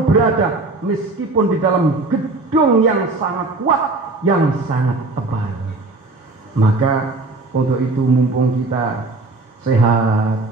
berada, meskipun di dalam gedung yang sangat kuat, yang sangat tebal. Maka untuk itu mumpung kita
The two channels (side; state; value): left; quieter; 3.3 dB